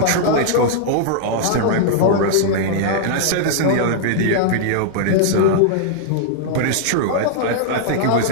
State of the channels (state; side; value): different; both; correlation -0.01